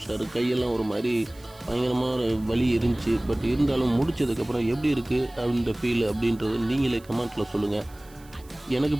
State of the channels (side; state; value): right; noise; hiss, 26 dB below the sound